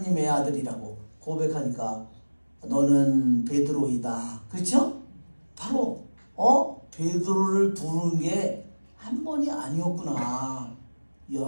아들이라고 고백하니까 너는 베드로이다. 그렇죠? 바로 베드로를 부르는 게 한 번이 아니었구나.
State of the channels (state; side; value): inverted; both; correlation -1.00